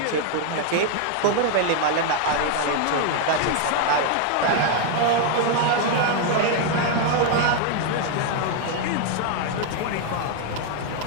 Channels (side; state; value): both; different; correlation 0.00